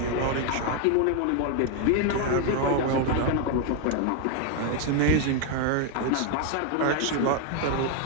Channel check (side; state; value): both; different; correlation 0.01